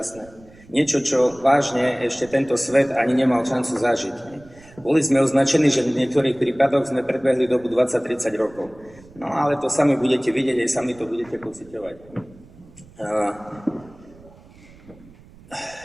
Niečo, čo vážne ešte tento svet ani nemal šancu zažiť. Boli sme označení, že v niektorých prípadoch sme predbehli dobu 20-30 rokov. No ale to sami budete vidieť, aj sami to budete pociťovať.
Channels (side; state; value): right; noise; rumble, 24 dB below the sound